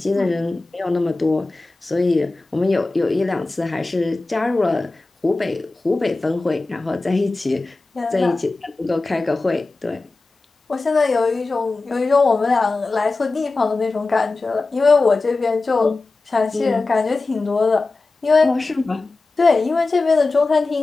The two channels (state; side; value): quieter; right; 3.5 dB